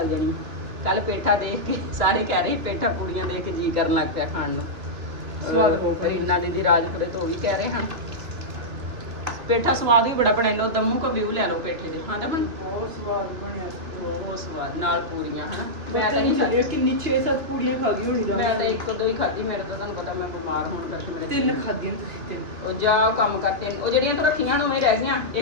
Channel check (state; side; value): late; left; 2.7 ms